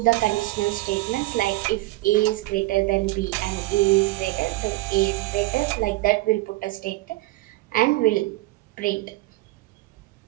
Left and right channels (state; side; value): quieter; left; 19.1 dB